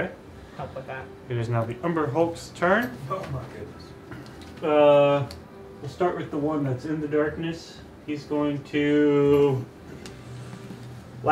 help with that. It is now the Umber Hulk's turn. Oh my goodness. We'll start with the one that's in the darkness. He's going to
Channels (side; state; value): both; identical; correlation 1.00